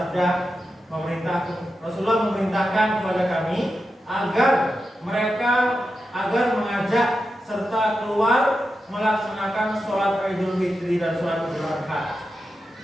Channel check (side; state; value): both; normal; correlation 0.89